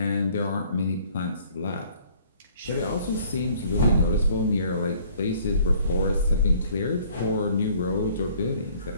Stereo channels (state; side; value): inverted; both; correlation -0.57